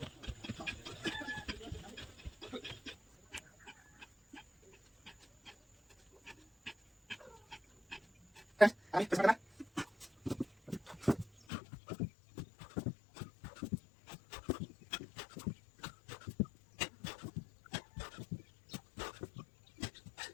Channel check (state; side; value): drops out; right; at 11.3 s